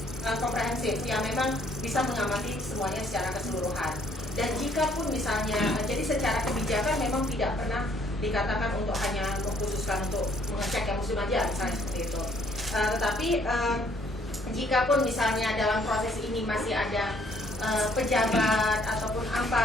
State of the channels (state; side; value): normal; both; correlation 0.64